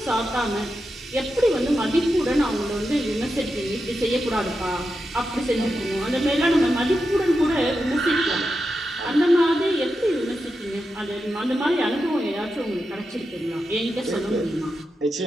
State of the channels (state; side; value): normal; both; correlation 0.88